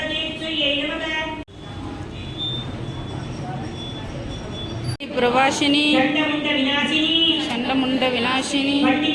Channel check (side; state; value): both; identical; correlation 1.00